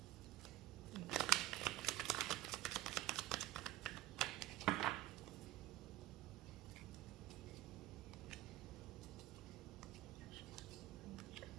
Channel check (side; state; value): left; quieter; 15.9 dB